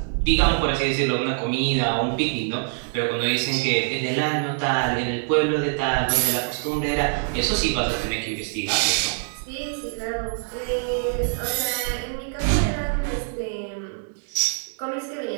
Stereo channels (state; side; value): silent; left; 62 dB below the other